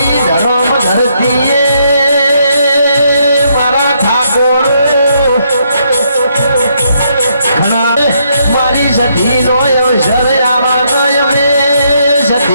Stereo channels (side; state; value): both; inverted; correlation -0.74